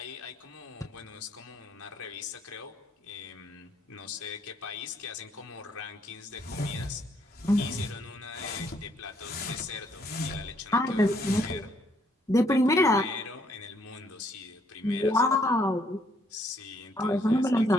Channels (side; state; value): both; normal; correlation 0.69